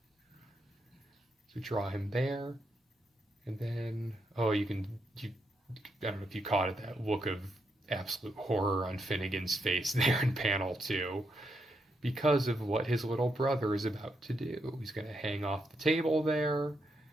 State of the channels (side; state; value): both; normal; correlation 0.81